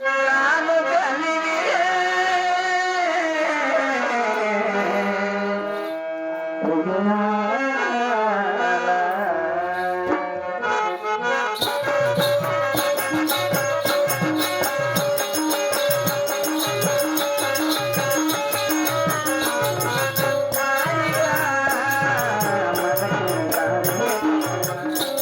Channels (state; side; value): identical; both; correlation 1.00